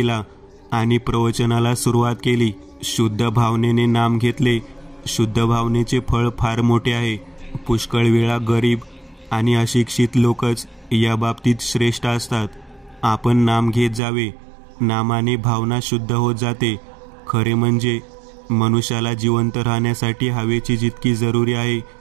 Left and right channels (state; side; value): drops out; left; at 14.0 s